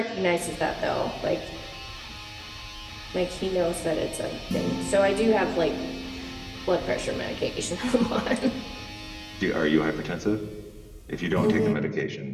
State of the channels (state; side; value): identical; both; correlation 1.00